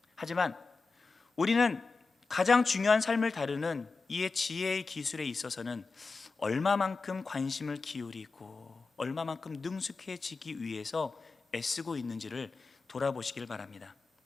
하지만 우리는 가장 중요한 삶을 다루는 이의 지혜의 기술에 있어서는 얼마만큼 관심을 기울이고 얼마만큼 능숙해지기 위해서 애쓰고 있는지를 돌아보시길 바랍니다.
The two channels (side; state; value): right; quieter; 4.2 dB